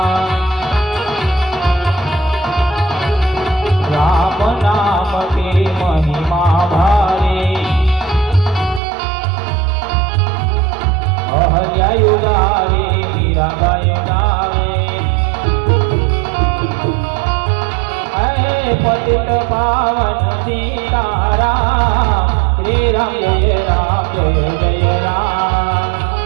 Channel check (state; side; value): drops out; left; at 8.8 s